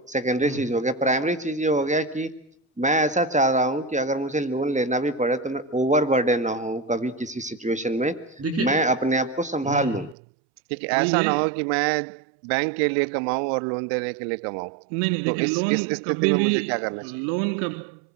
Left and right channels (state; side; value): drops out; left; at 10.2 s